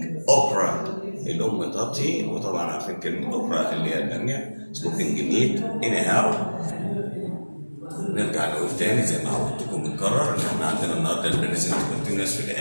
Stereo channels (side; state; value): both; inverted; correlation -1.00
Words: okra. الام تطهي، وطبعا عارفين كلمه اوكرا اللي هي الباميه. cooking meat anyhow. نرجع نقول تاني زي ما عودتكم بنكرر ان احنا عندنا النهارده البريزنت كونتينوس في